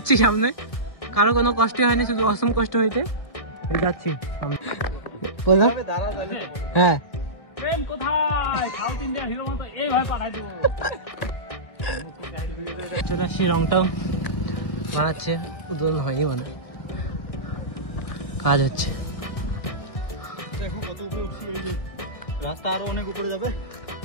সামনে। কারো কোনো কষ্ট হয়নি, শুধু অসম কষ্ট হয়েছে। যাচ্ছি হ্যাঁ। চলে আসছি, রংটাও বানাচ্ছে, উদ্বোধন হয়নি মানে, কাজ হচ্ছে। দেখো কত উপরে উঠছি, ওই যে রাস্তা আরো অনেক উপরে যাবে,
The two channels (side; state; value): right; late; 1.6 ms